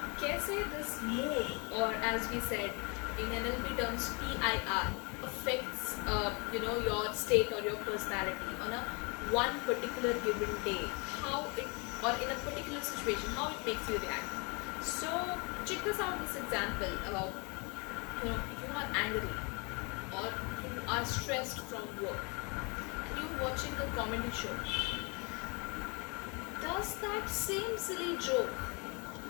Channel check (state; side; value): quieter; right; 31.4 dB